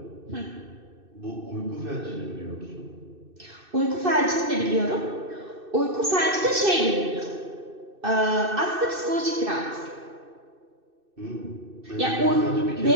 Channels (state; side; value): late; left; 2.6 ms